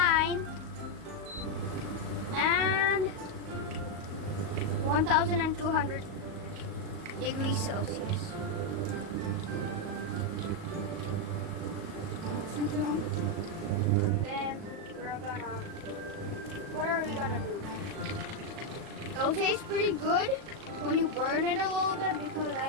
And 1,200 degrees Celsius. Then we're gonna, what are we gonna do? It'll taste pretty good when you burn it a little bit, because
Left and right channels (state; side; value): late; left; 37 ms